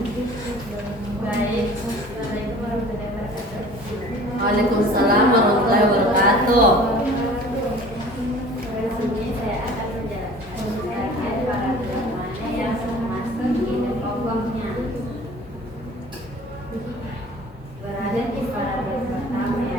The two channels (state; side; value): normal; both; correlation 0.46